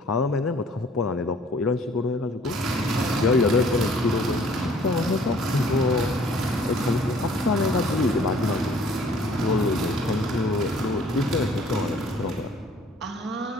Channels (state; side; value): normal; both; correlation 0.55